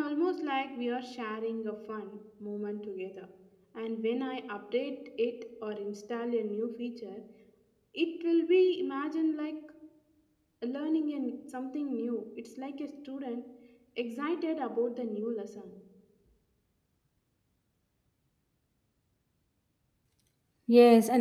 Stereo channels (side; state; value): both; identical; correlation 1.00